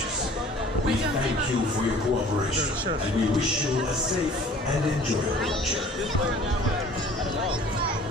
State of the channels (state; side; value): normal; both; correlation 0.49